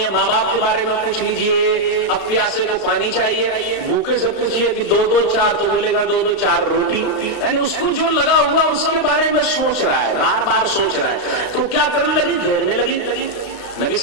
ہے ماں باپ کے بارے میں پوچھ لیجئے۔ اب پیاسے کو پانی چاہیے، بھوکے سے پوچھئے کہ 2 4 تو بولے گا 2 4 روٹی، یعنی اس کو جو لگا ہوا اس کے بارے میں سوچ رہا ہے، بار بار سوچ رہا ہے، تو کیا کرنے لگی، گھیرنے لگی۔ نبی صلی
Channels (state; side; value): late; right; 34 ms